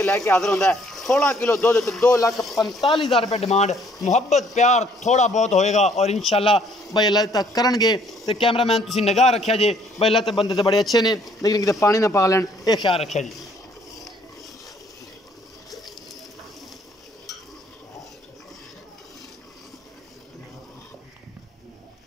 लैके हाजिर होंदा है। 16 किलो दुध तो 2,45,000 रुपये डिमांड। मुहब्बत प्यार थोड़ा बहुत होएगा और इंशाल्लाह भाई अल्लाह तक करनगे। तो कैमरामैन तुसी निगाह रखिया जे भाई अल्लाह ते बंदे तो बड़े अच्छे ने, लेकिन किते पानी ना पा लैन, ये ख्याल रखिया जी।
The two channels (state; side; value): normal; both; correlation 0.63